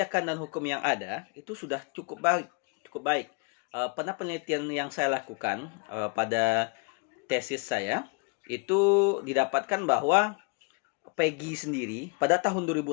dan hukum yang ada itu sudah cukup baik. Pada penelitian yang saya lakukan pada tesis saya itu didapatkan bahwa PEGI sendiri pada tahun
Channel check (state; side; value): quieter; right; 33.8 dB